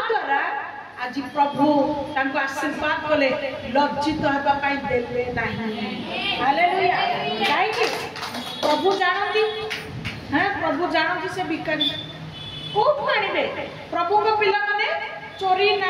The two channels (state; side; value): identical; both; correlation 1.00